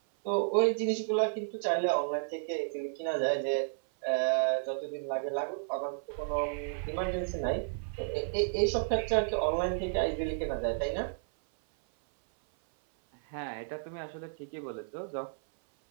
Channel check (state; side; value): silent; left; 56 dB below the other